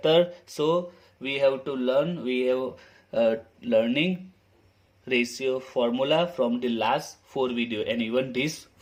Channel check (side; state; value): both; identical; correlation 1.00